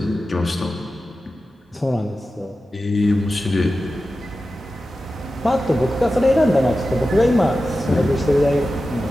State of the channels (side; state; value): both; normal; correlation 0.93